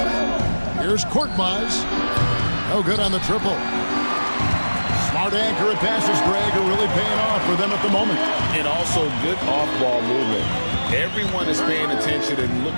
Here's Korkmaz. No good on the triple. Smart accurate passes, Greg, are really paying off for them at the moment. And also good off-ball movement. Everyone is paying attention and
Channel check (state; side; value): inverted; both; correlation -1.00